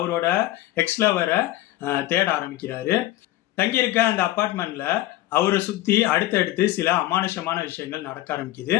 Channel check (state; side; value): quieter; right; 16.0 dB